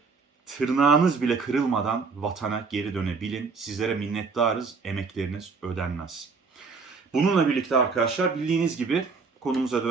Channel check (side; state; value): left; quieter; 4.7 dB